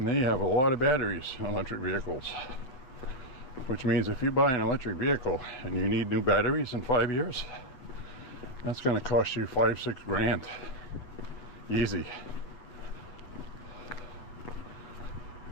they have a lot of batteries in electric vehicles, which means if you buy an electric vehicle and you need new batteries in 5 years, that's going to cost you $5-6 grand. Easy.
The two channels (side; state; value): right; late; 7.9 ms